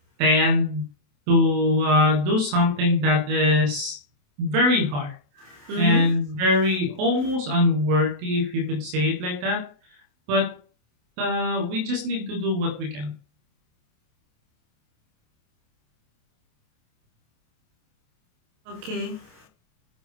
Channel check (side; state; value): left; late; 27 ms